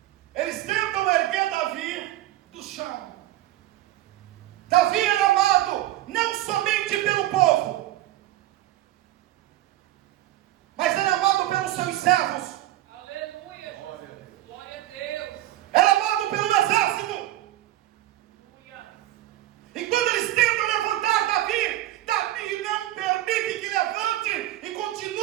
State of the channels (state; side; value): quieter; left; 15.0 dB